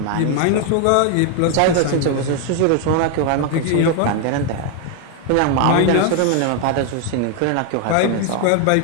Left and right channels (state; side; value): different; both; correlation 0.01